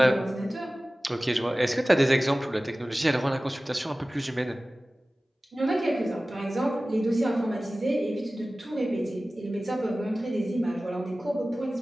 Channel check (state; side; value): normal; both; correlation 0.97